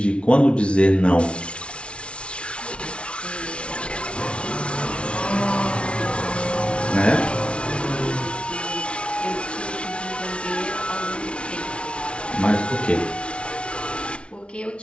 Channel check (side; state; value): right; late; 0.059 ms